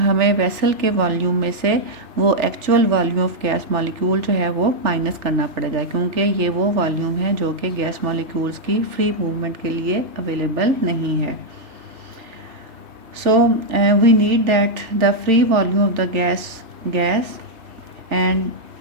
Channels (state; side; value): late; left; 3.4 ms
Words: वेसल के वॉल्यूम में से वो actual volume of gas molecule जो है वो माइनस करना पड़ेगा, क्योंकि ये वो वॉल्यूम है जो कि गैस मॉलिक्यूल्स की फ्री मूवमेंट के लिए अवेलेबल नहीं है। So we need that the free volume of the gas and